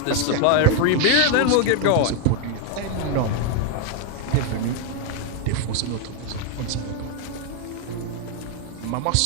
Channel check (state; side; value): different; both; correlation 0.01